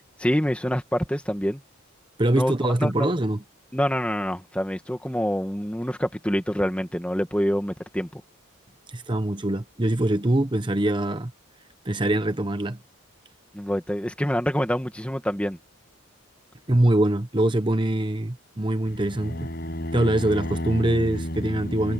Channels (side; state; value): both; normal; correlation 0.87